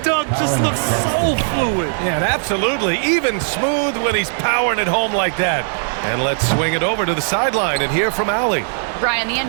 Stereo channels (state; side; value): silent; left; 67 dB below the other